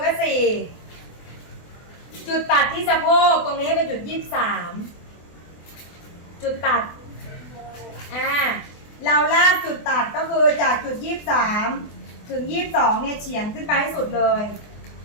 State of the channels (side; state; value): right; late; 24 ms